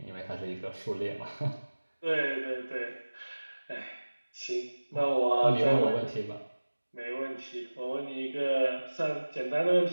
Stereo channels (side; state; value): both; inverted; correlation -1.00